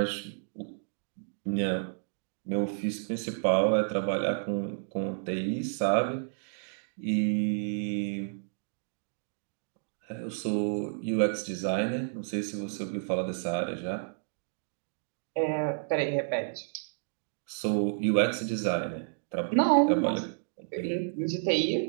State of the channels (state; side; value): silent; left; digital silence